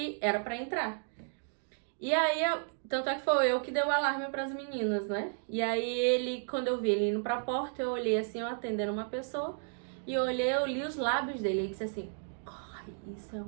era pra entrar. E aí, tanto é que foi eu que dei o alarme pras meninas, né? E aí quando eu vi ele indo pra porta, eu olhei assim, eu atendendo uma pessoa, e eu li os lábios dele, e disse assim, corre,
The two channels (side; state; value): left; silent; digital silence